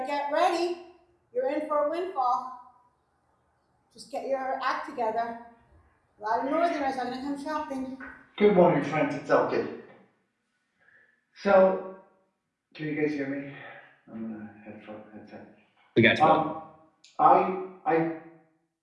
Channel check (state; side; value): identical; both; correlation 1.00